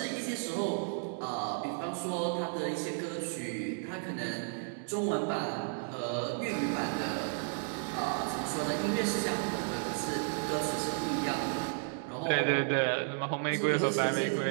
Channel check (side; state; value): left; silent; 56 dB below the other